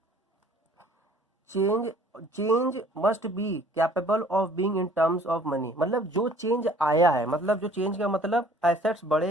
change change must be capable of being in terms of money. मतलब जो चेंज आया है, मतलब जो चेंज का मतलब एसेट्स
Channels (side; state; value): both; normal; correlation 0.54